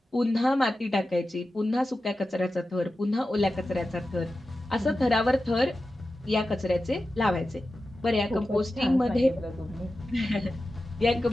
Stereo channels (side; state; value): both; normal; correlation 0.93